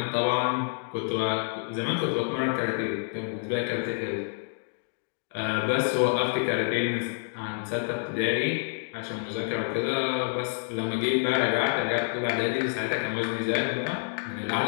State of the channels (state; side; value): silent; right; digital silence